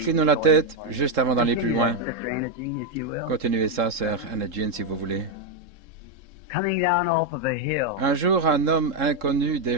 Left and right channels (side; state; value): left; late; 3.7 ms